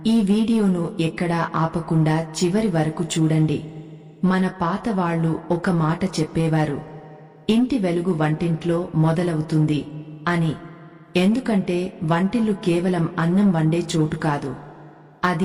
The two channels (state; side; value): identical; both; correlation 1.00